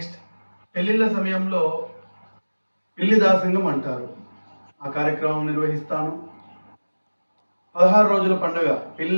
పెళ్లిళ్ళ సమయంలో పెళ్లి దాసంగం అంటారు, ఆ కార్యక్రమం నిర్వహిస్తాను. 16 రోజుల పండుగ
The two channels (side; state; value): both; inverted; correlation -1.00